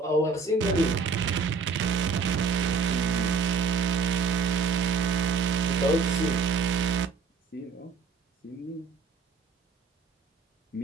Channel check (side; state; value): left; quieter; 4.9 dB